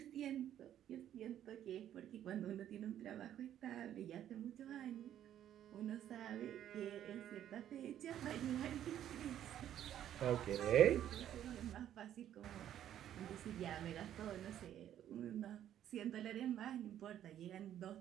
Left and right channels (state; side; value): quieter; left; 11.0 dB